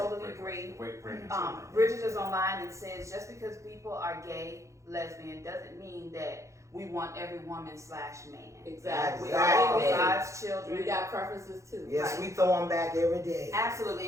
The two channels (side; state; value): left; late; 0.15 ms